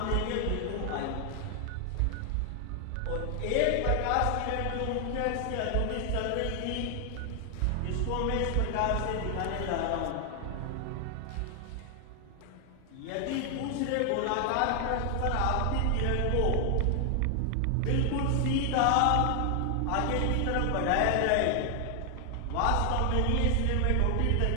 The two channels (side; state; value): both; different; correlation 0.00